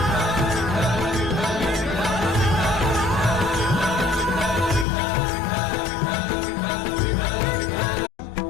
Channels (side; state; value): right; drops out; at 4.9 s